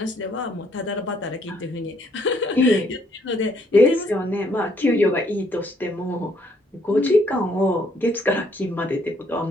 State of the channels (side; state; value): both; normal; correlation 0.68